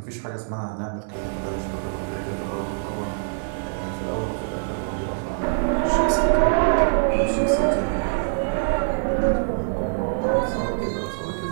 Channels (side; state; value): left; silent; digital silence